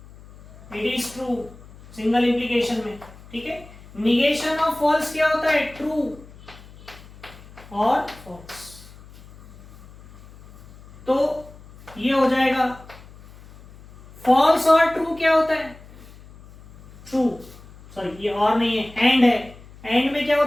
it is true single implication में, ठीक है। निगेशन ऑफ फॉल्स क्या होता है, ट्रू और फॉल्स। तो ये हो जाएगा, फॉल्स और ट्रू क्या होता है, ट्रू, सॉरी ये और नहीं है, एंड है, एंड में क्या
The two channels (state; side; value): noise; left; hum, 21 dB below the sound